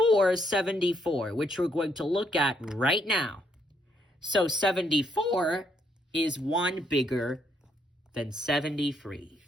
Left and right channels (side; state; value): both; normal; correlation 0.73